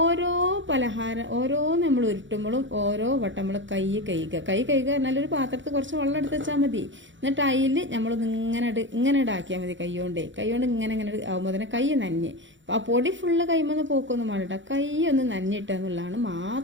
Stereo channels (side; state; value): left; late; 0.55 ms